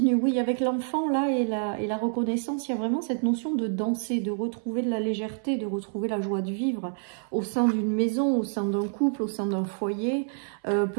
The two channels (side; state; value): left; silent; 60 dB below the other